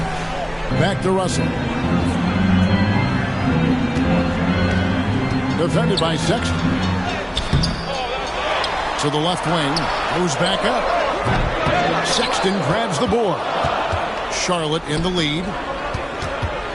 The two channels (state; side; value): identical; both; correlation 1.00